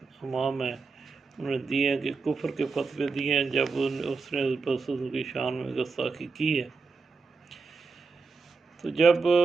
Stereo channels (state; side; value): quieter; left; 4.5 dB